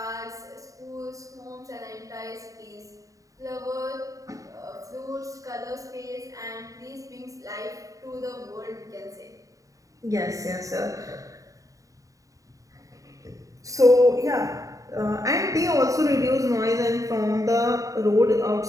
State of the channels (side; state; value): left; late; 0.16 ms